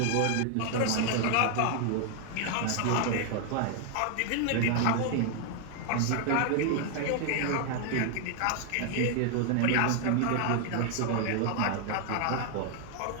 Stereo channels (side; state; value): both; different; correlation 0.00